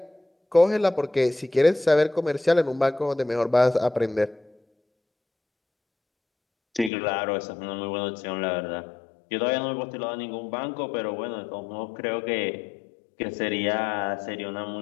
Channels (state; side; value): drops out; right; at 6.9 s